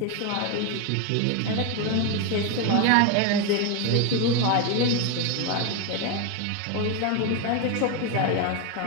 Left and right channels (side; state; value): both; different; correlation 0.02